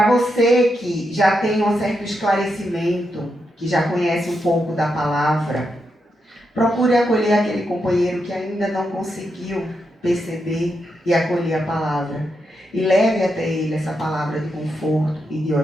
você que já tem um certo esclarecimento, que já conhece um pouco da palavra, procure acolher aquele companheiro que ainda não conseguiu perceber e acolher a palavra. E leve até ele essa palavra de conforto e de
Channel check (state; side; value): normal; both; correlation 0.84